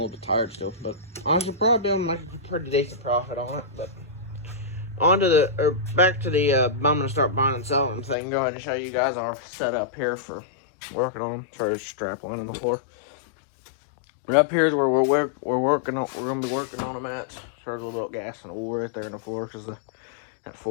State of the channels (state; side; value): drops out; right; at 8.2 s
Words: little bit tired still, but I should probably be able to make a pretty decent profit on it. But back to the I'm gonna start buying and selling thing. Go ahead and show you guys our setup here for working on them. Try to strap one on the floor. But up here is where we're working on. We're gonna be working on them at. There's a little gas and oil right there in the floor because that